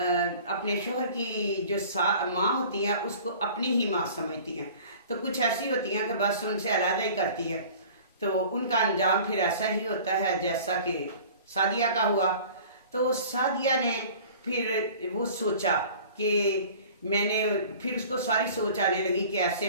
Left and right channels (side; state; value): both; inverted; correlation -0.45